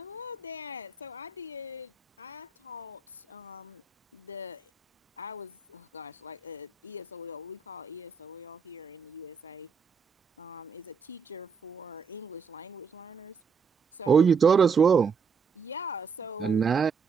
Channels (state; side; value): quieter; left; 5.6 dB